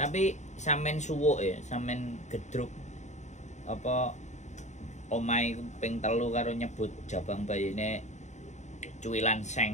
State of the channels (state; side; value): late; right; 0.34 ms